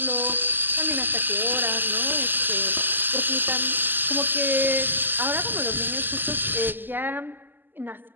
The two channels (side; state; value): left; late; 0.091 ms